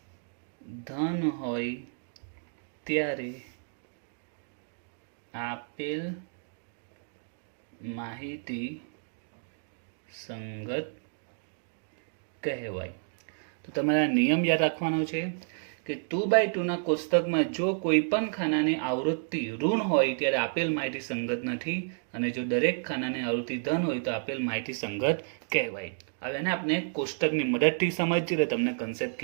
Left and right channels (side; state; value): left; silent; digital silence